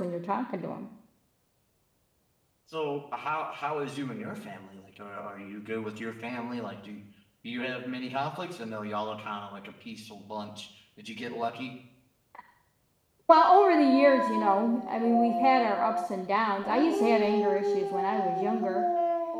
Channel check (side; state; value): both; identical; correlation 1.00